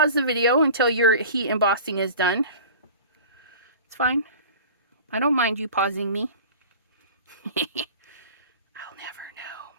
the video until your heat embossing is done. It's fine. I don't mind you pausing me. I'll never know.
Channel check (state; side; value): inverted; both; correlation -0.39